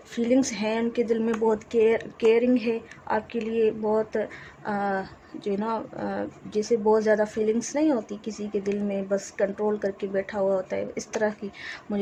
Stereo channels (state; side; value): identical; both; correlation 1.00